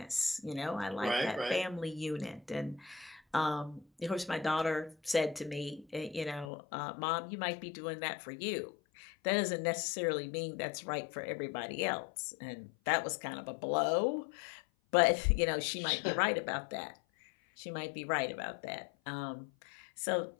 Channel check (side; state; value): right; drops out; at 6.5 s